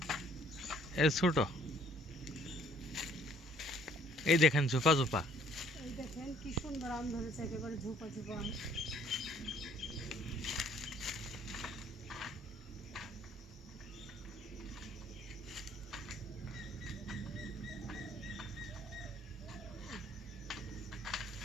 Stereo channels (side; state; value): both; normal; correlation 0.60